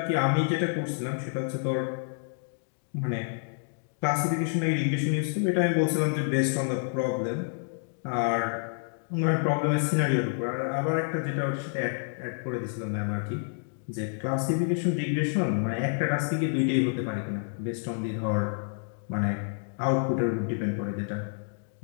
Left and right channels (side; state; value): right; silent; digital silence